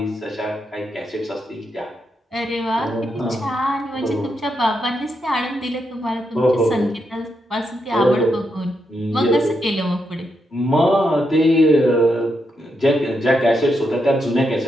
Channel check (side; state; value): both; normal; correlation 0.82